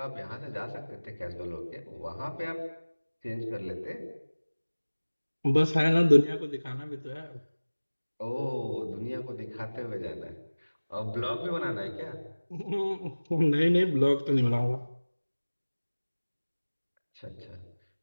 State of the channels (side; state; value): both; inverted; correlation -1.00